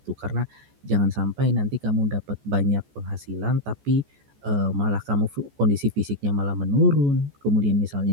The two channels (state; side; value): late; left; 14 ms